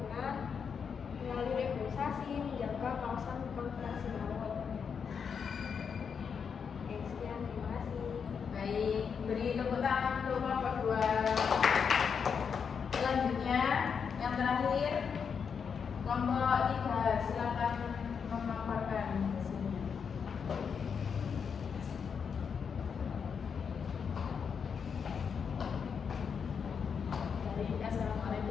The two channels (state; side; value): quieter; right; 6.5 dB